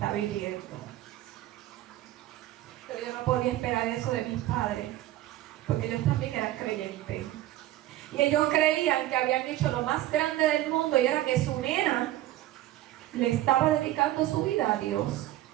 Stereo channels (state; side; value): quieter; left; 15.0 dB